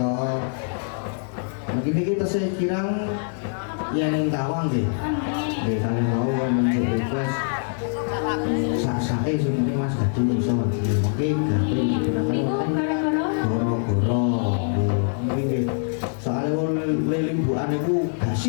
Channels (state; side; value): silent; right; digital silence